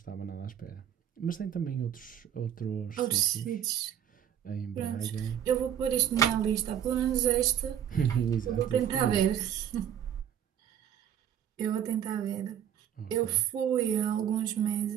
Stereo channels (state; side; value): quieter; left; 9.5 dB